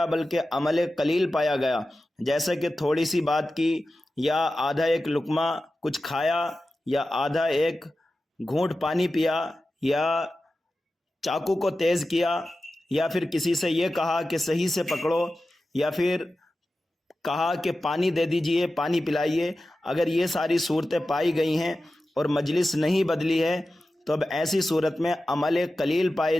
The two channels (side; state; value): both; normal; correlation 0.94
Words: بلکہ عمل قلیل پایا گیا، جیسے کہ تھوڑی سی بات کی یا آدھا ایک لقمہ کچھ کھایا یا آدھا ایک گھونٹ پانی پیا یا چاقو کو تیز کیا یا پھر کسی سے یہ کہا کہ صحیح سے پکڑو یا پھر کہا کہ پانی دے دیجئے، پانی پلائیے، اگر یہ ساری صورتیں پائی گئی ہیں اور مجلس نہیں بدلی ہے تو اب ایسی صورت میں عمل قلیل پائے